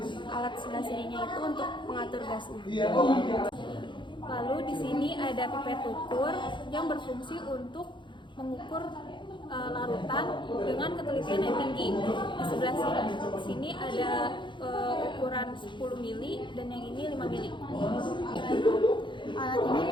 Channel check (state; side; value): late; right; 0.23 ms